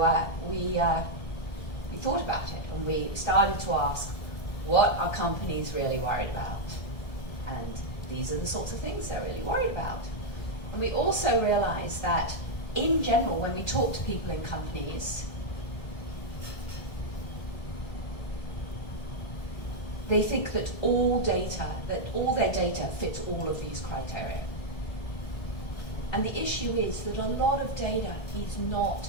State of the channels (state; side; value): late; right; 1.6 ms